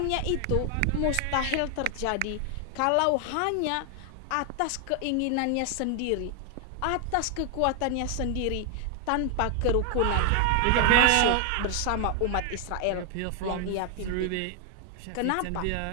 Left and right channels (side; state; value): both; different; correlation 0.00